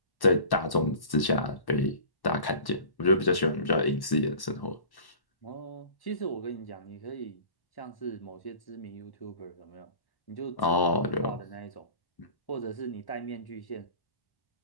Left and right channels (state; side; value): late; right; 1.1 ms